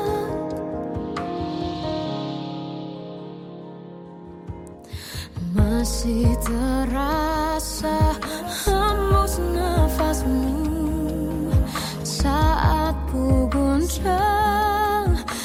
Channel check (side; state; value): both; identical; correlation 1.00